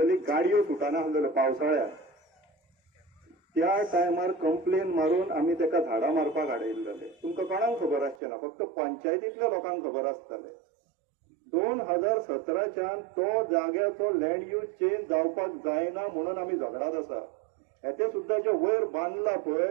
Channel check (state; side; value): drops out; left; at 8.2 s